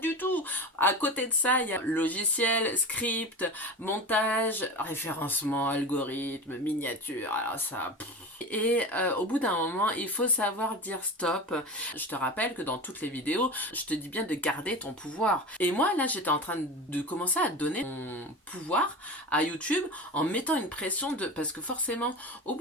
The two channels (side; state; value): both; normal; correlation 0.29